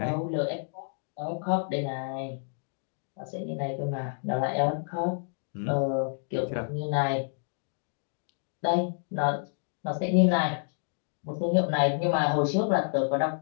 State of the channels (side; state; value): right; silent; digital silence